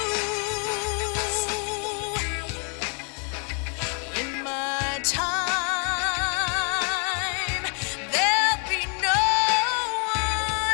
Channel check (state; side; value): quieter; right; 39.0 dB